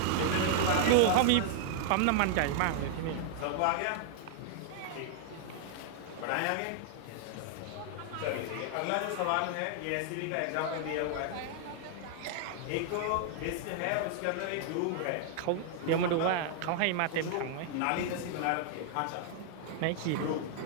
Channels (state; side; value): different; both; correlation 0.00